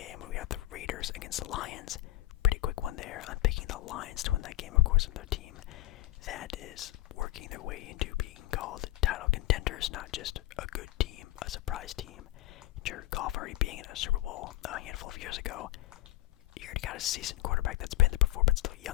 we have the Raiders against the Lions. Pretty quick one there. I'm picking the Lions to win that game, of course, with their team that is working their way into being called title contenders, not just a good team, a surprise team. Jared Goff already being in a Super Bowl a handful of years ago. You already got a seasoned quarterback that's been there before, but still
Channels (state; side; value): quieter; right; 16.9 dB